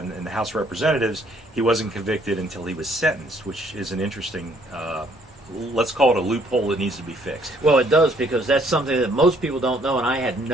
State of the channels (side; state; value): both; normal; correlation 0.65